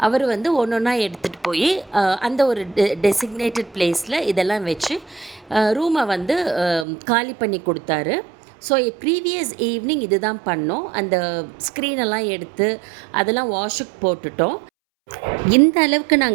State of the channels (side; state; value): left; drops out; at 6.9 s